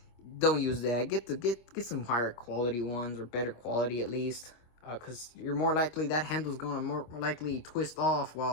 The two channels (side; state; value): right; late; 26 ms